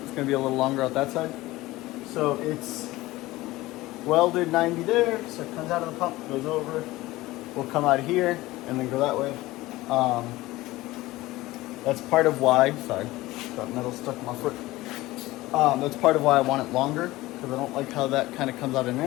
going to be a little longer out that side. So it's welded 90 there. So it comes out of the pump, goes over. We'll come out here and then go that way. That's part of why. Sorry, got metal stuck in my foot. That's part of why I want it longer, because I don't like how that kind of comes out at an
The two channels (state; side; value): quieter; right; 18.5 dB